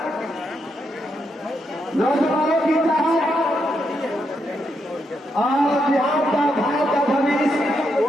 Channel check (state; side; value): normal; both; correlation 0.81